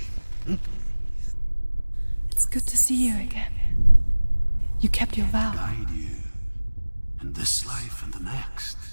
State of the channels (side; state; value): both; inverted; correlation -1.00